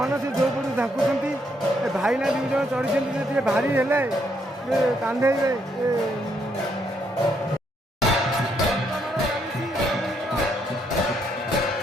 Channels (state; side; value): normal; both; correlation 0.74